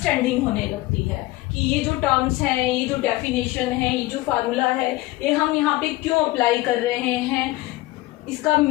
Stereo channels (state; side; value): quieter; right; 18.9 dB